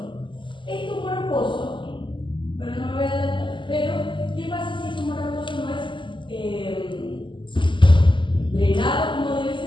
Este humor acuoso, bueno, no me voy a adelantar, pero ¿qué pasa si ese humor acuoso no es drenado como debe ser?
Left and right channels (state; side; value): late; right; 0.24 ms